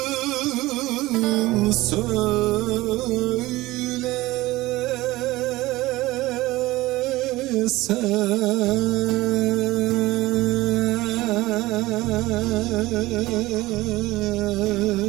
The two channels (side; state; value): left; quieter; 18.7 dB